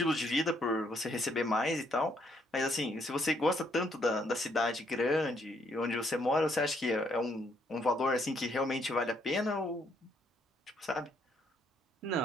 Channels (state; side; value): normal; both; correlation 0.70